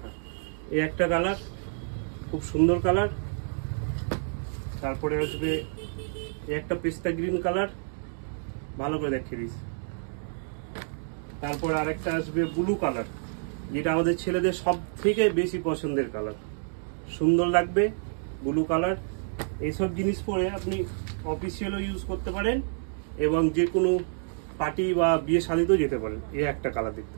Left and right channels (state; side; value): silent; left; digital silence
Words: এই একটা কালার, খুব সুন্দর কালার। তারপরে আসবে একটা পেস্তা গ্রিন কালার, ভালো করে দেখিয়ে দিস। তারপরে আরেকটা আসবে ব্লু কালার, যেটা আমাদের ছেলেদের সব থেকে বেশি পছন্দের কালার, সুন্দর লাগবে ব্লু কালার। এইসব জিনিস পরে আপনি অফিসিয়ালও ইউজ করতে পারেন এবং যে কোনো পার্টি বা বিয়ে শাদীতেও যেতে পারেন। এই একটা কালার দেখতে